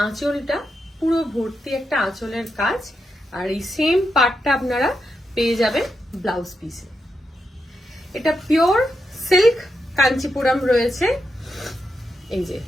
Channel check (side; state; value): both; normal; correlation 0.85